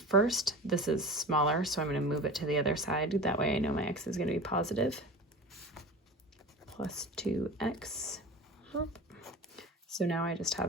first. This is smaller, so I'm going to move it to the other side. That way I know my x is going to be positive. Plus 2x. So now I just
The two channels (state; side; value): normal; both; correlation 0.34